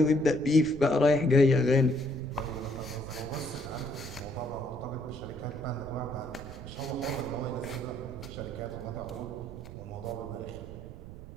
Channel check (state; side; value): noise; right; rumble, 13 dB below the sound